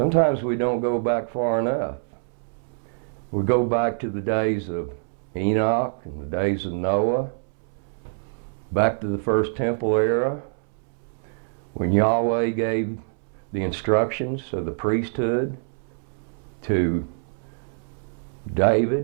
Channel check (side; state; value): left; silent; 62 dB below the other